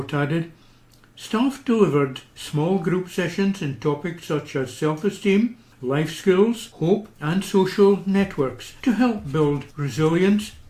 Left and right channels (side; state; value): both; identical; correlation 1.00